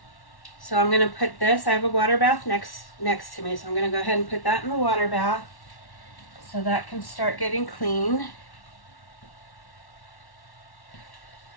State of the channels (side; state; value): right; late; 1.1 ms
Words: So I'm going to put this, I have a water bath next to me, so I'm going to go ahead and put that in the water bath so that can start getting clean.